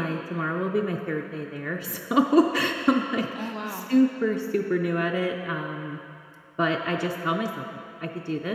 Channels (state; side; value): identical; both; correlation 1.00